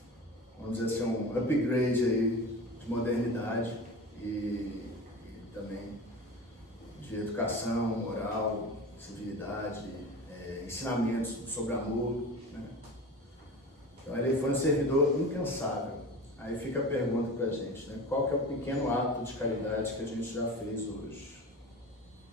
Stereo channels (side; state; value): both; normal; correlation 0.32